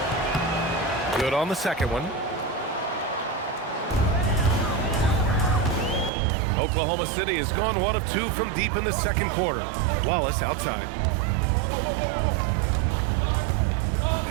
Good on the second one. Oklahoma City has gone 1 of 2 from deep in the second quarter. Wallace outside.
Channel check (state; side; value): drops out; left; at 6.1 s